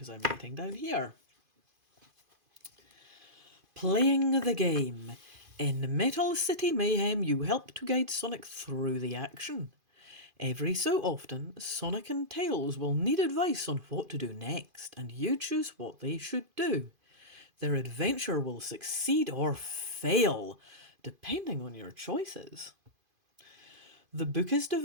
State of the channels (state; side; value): late; left; 2.5 ms